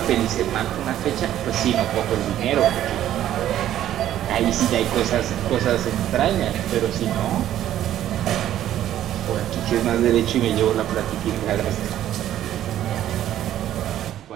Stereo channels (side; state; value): left; quieter; 12.0 dB